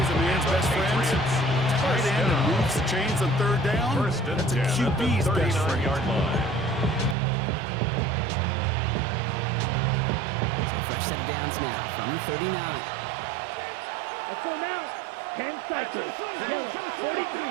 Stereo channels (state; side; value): drops out; left; at 7.2 s